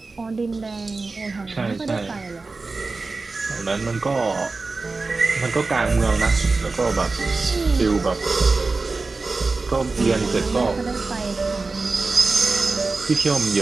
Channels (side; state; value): left; quieter; 3.8 dB